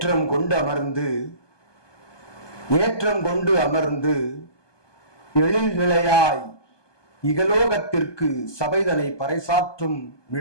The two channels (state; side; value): late; right; 1.2 ms